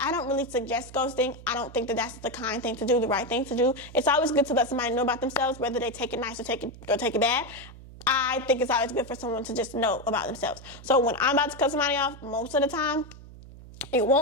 I don't really suggest ghosting. I don't think that that's the kind thing to do, the right thing to do. It's always good to let somebody know about themselves, whether they take it nice or take it bad. I think it's always good for someone to just know about themselves. So when I'm about to cut somebody off, most of the time, it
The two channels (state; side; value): noise; right; hum, 17 dB below the sound